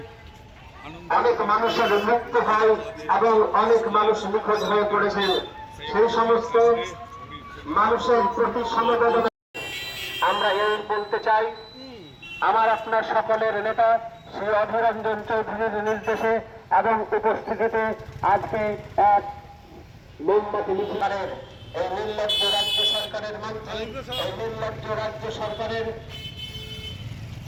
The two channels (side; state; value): both; identical; correlation 1.00